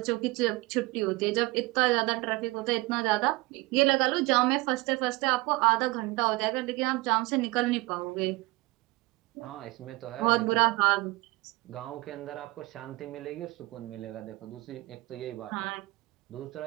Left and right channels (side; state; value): left; quieter; 22.3 dB